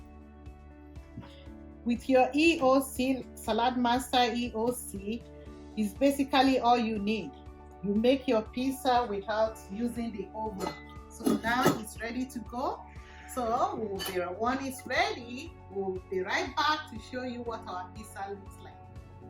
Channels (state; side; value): identical; both; correlation 1.00